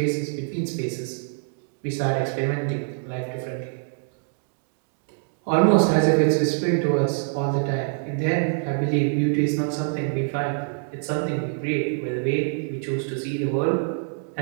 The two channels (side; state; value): left; silent; 62 dB below the other